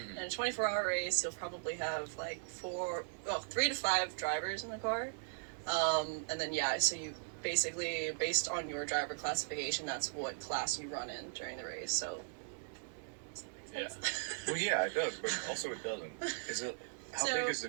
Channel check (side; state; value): left; silent; digital silence